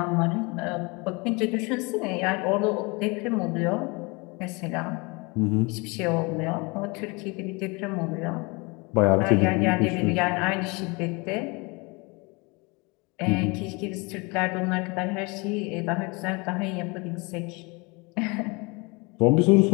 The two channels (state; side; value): quieter; right; 27.9 dB